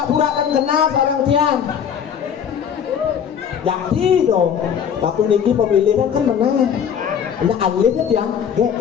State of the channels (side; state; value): right; quieter; 8.1 dB